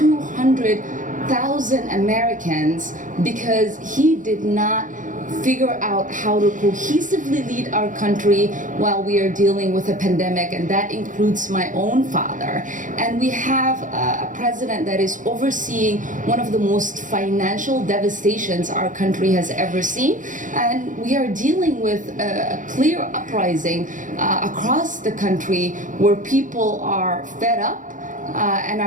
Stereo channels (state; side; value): late; left; 0.38 ms